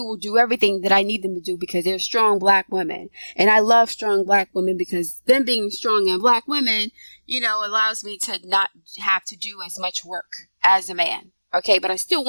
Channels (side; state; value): both; inverted; correlation -1.00